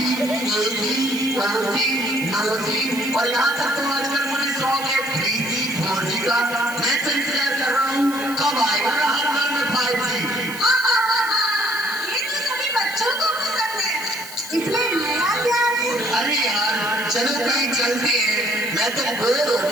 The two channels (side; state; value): right; noise; hiss, 14 dB below the sound